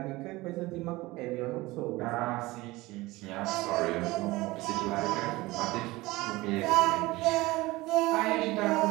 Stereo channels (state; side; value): quieter; left; 20.3 dB